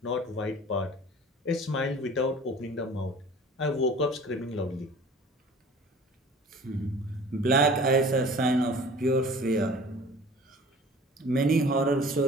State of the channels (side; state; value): both; normal; correlation 0.45